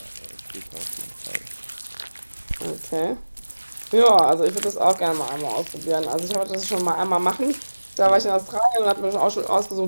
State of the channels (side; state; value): both; inverted; correlation -1.00